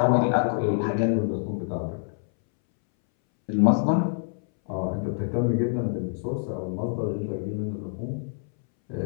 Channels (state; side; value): silent; right; 61 dB below the other